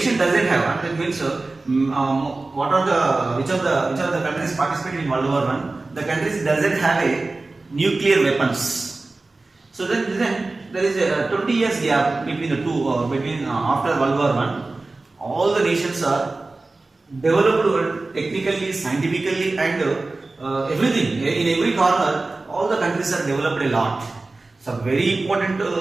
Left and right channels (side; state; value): left; quieter; 3.3 dB